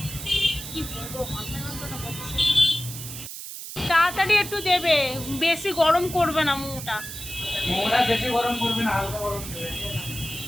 কি বলবো, মাথা যন্ত্রণা করছে। তাড়াতাড়ি একটু দেবে, বেশি গরম করবে না মোমোটা। বেশি গরম করবে না, হালকা গরম দেবে।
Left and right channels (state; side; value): noise; right; hiss, 10 dB below the sound